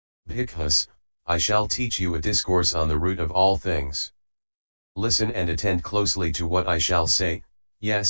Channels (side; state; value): both; inverted; correlation -1.00